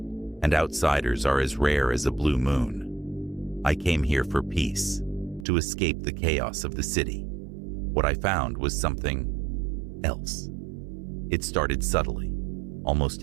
and outsiders are as rare as a blue moon. I came here for peace, to escape the chaos of the city. What I found was something else. It started subtly, almost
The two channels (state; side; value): drops out; left; at 5.5 s